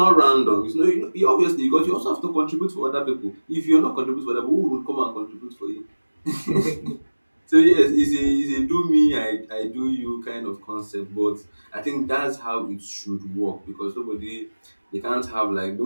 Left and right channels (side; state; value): both; inverted; correlation -1.00